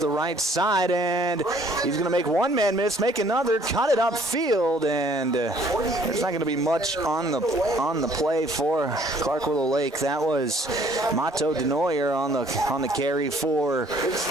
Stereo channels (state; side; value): normal; both; correlation 0.59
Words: right side, and he's going to make one man miss, make another, cut it upfield, and there's not going to be much on the play for Clark Willow Lake. That was Mato Denoyer on the carry for